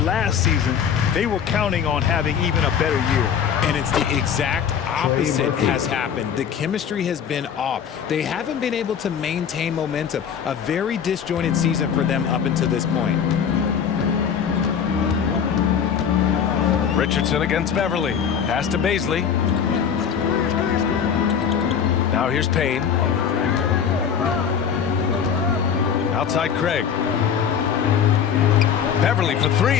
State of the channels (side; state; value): right; quieter; 7.7 dB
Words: last season, they were counting on having even a better year. And it's the exact opposite has happened. The chemistry has been off. They haven't been able to maintain momentum. A very disjointed season for them up until this point. Richardson against Beverly. Pass to Baisley. Now here's Payne. Outside Craig. Beverly for